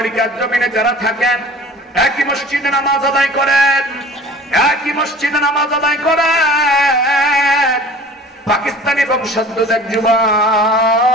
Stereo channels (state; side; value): normal; both; correlation 0.43